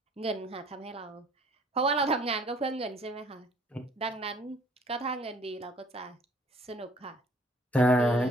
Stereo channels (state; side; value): normal; both; correlation 0.57